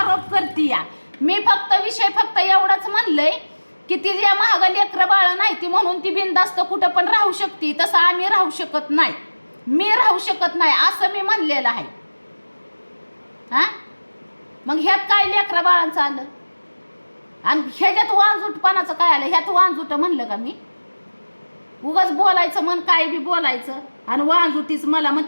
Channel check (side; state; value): both; inverted; correlation -1.00